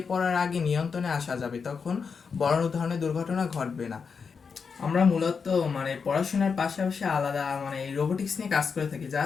পড়ার আগে নিয়ন্ত্রণে আসা যাবে, তখন বড় ধরনের দুর্ঘটনা ঘটবে না। আমরা মূলত পড়াশোনার পাশাপাশি আলাদা রোবোটিক্স নিয়ে কাজ করে থাকি।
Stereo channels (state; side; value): quieter; right; 5.7 dB